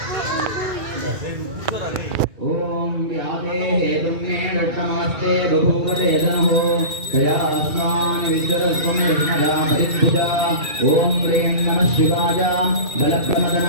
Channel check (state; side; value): late; left; 2.3 ms